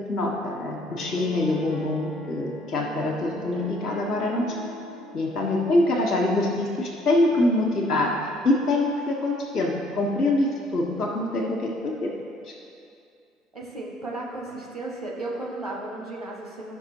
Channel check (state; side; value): normal; both; correlation 0.62